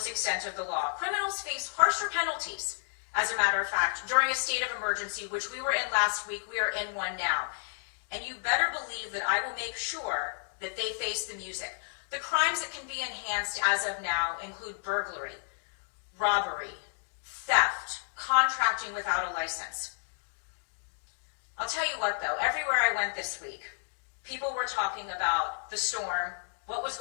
extent of the law. Criminals face harsher penalties, as a matter of fact, during a state of emergency, which we were in last week. We are in one now. And you better believe that I will make sure that they face the music. The crimes that can be enhanced as of now include burglary, robbery, theft, contracting without a license. I'll tell you what though, everywhere I went this week, people were talking about the storm, what was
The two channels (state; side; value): silent; right; digital silence